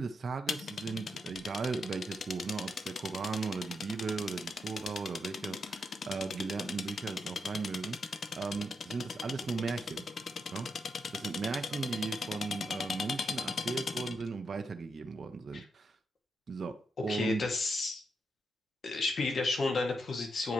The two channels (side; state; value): both; normal; correlation 0.83